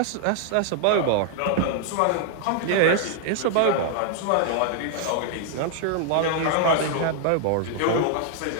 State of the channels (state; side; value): different; both; correlation 0.00